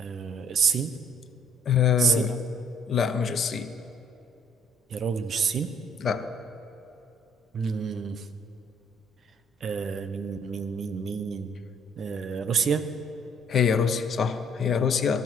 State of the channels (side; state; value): both; normal; correlation 0.63